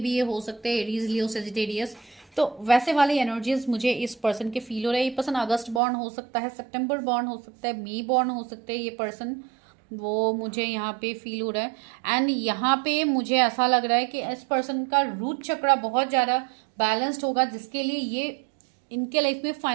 ये हो सकते हैं, एरीज, लियो, सेजिटेरियस, तो वैसे वाले एनर्जीज मुझे इस पर्सन के फील हो रहे हैं। ये पर्सन अगस्त बॉर्न हो सकता है, सितंबर बॉर्न हो सकता है, मई बॉर्न हो सकते हैं ये पर्सन, वो मुझे यहाँ पे फील हो रहा है। एंड यहाँ पे मुझे ऐसा लग रहा है कि इस पर्सन का रूट चक्रा बहुत ज़्यादा बैलेंस्ड होगा, जिसके लिए ये इनके लाइफ में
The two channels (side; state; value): left; drops out; at 5.8 s